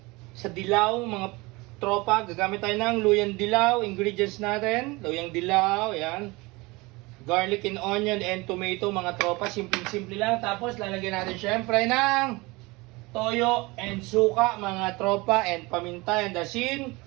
sa dilaw mga tropa. Gagamit tayo ng luyang dilaw. Ingredients natin, luyang dilaw, yan. Garlic and onion and tomato mga tropa. Simple-simple lang. Tapos lalagyan natin syempre ng toyo and suka mga tropa and paminta and asin.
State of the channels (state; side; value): quieter; left; 23.7 dB